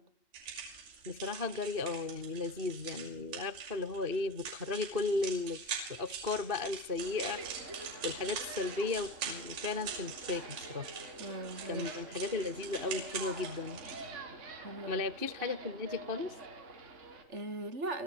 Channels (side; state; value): left; late; 2.7 ms